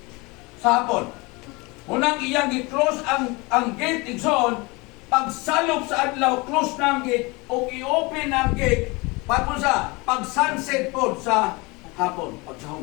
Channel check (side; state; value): right; quieter; 25.7 dB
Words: sa hapon. Munang iyang i-close ang gate Igsoon, pagsalop sa adlaw, close na ang gate o i-open ang gate pag sunset po sa hapon,